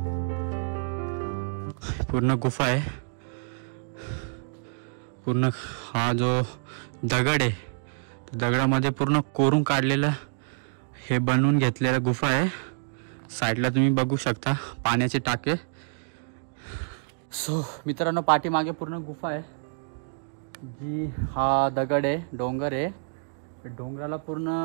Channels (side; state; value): left; silent; digital silence